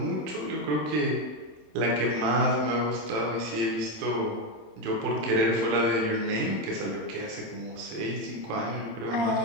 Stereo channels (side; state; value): left; late; 27 ms